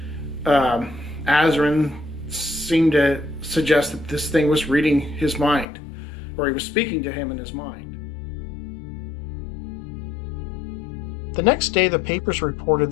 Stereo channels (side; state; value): right; drops out; at 5.7 s